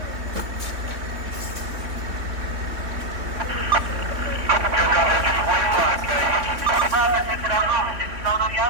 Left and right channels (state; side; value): late; left; 3.6 ms